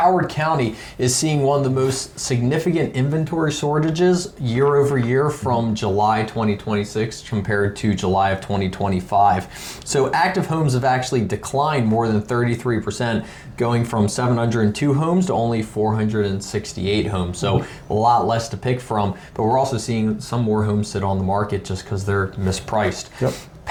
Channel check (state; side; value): identical; both; correlation 1.00